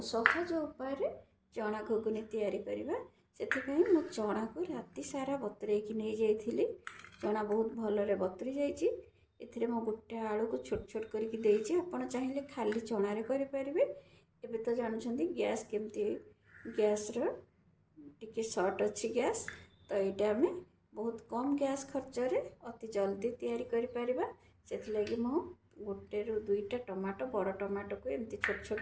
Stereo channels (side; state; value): both; identical; correlation 1.00